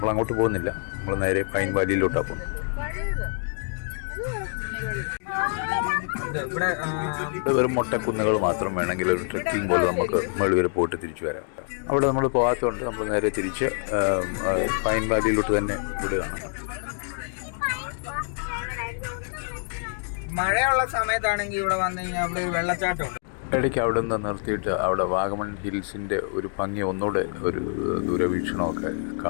അങ്ങോട്ട് പോകുന്നില്ല, നമ്മൾ നേരെ പൈൻ വാലിയിലോട്ടാണ് പോകുന്നത്. ഇവിടെ വെറും മൊട്ടക്കുന്നുകൾ മാത്രം. വേണമെങ്കിൽ ഒരു ട്രെക്കിംഗ് പോലെ നമുക്ക് മുകളിൽ വരെ പോയിട്ട് തിരിച്ചു വരാം. അവിടെ നമ്മൾ പോകാത്തതുകൊണ്ട് നമ്മൾ നേരെ തിരിച്ച് പൈൻ വാലിയിലോട്ട് തന്നെ വിടുകയാണ്. മഴയുള്ള സമയത്താണെങ്കിൽ ഇവിടെ വന്നു കഴിഞ്ഞാൽ അവിടെ ഒരു വെള്ളച്ചാട്ടമുണ്ട്. ഇടയ്ക്ക് അവിടെ നിന്ന് നിർത്തിയിട്ട് അവിടെ വാഗമൺ ഹിൽസിൻ്റെ ഒരു ഭംഗി ഒന്നുകൂടെ ഒരു ദൂരവീക്ഷണമൊക്കെ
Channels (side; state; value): right; silent; 61 dB below the other